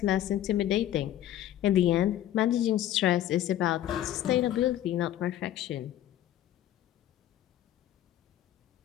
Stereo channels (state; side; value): quieter; right; 12.5 dB